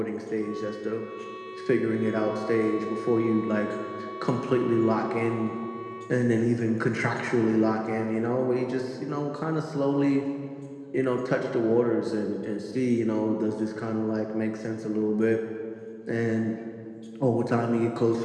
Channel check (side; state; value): both; identical; correlation 1.00